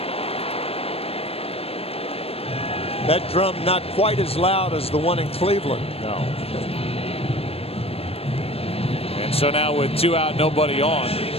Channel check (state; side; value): late; right; 0.28 ms